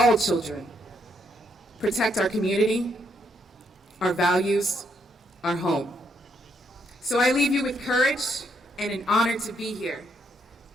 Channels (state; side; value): normal; both; correlation 0.75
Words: children, protect our community, our values, our home. So I leave you with courage and an honor to be here.